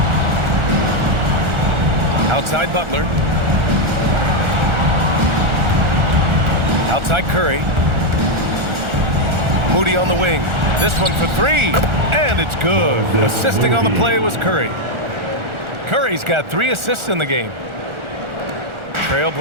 Outside Butler. Outside Curry. Moody on the wing. This one for 3. And it's good. Assisting on the play was Curry. Curry's got 3 assists in the game.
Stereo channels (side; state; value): left; late; 1.4 ms